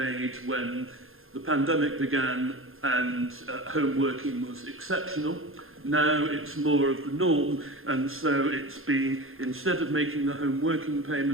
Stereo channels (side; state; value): left; late; 0.60 ms